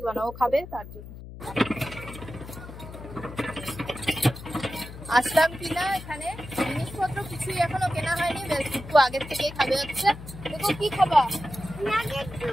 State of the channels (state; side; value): noise; left; hum, 13 dB below the sound